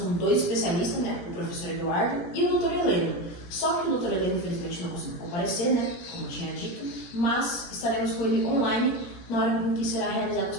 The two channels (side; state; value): right; late; 17 ms